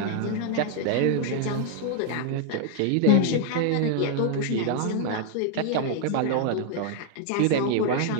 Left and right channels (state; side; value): different; both; correlation 0.00